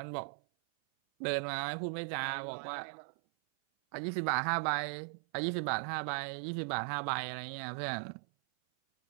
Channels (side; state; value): left; silent; 53 dB below the other